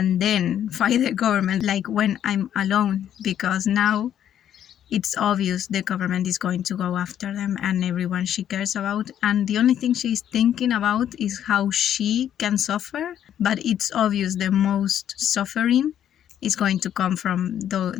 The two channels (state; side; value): quieter; right; 10.3 dB